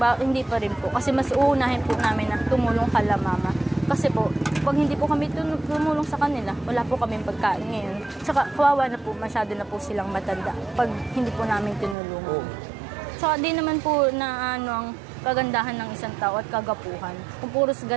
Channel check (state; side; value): drops out; left; at 12.0 s